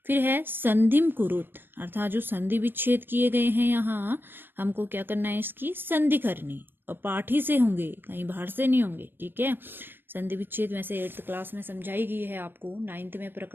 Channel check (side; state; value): left; late; 0.097 ms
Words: फिर है संधिम कुरुत, अर्थात जो संधि विच्छेद किए गए हैं यहाँ, हमको क्या करना है, इसकी संधि करनी, और पाठ ही से होंगे, कहीं बाहर से नहीं होंगे। ठीक है, संधि विच्छेद वैसे 8th क्लास में समझाई गई है आपको, 9th में